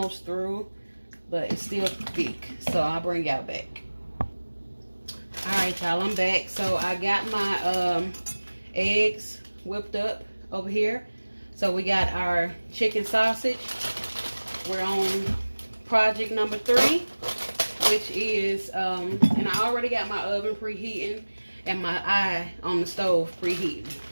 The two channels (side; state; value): both; inverted; correlation -1.00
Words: through, but it's still thick. So I'll bring y'all back. All right, y'all, I'm back. So I got my eggs whipped up over here. So we got our chicken sausage. We're on project number 3, which is, and I already got my oven preheating and my eye on the stove preheating,